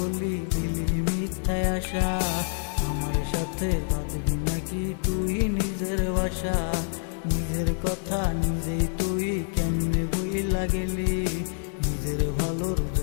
দিলি মিথ্যায় আশা, আমার সাথে বাঁধবি নাকি তুই নিজের বাসা। নিজের কথা নিজেই তুই কেমনে বইলা গেলি, নিজের ভালোর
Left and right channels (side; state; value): right; silent; digital silence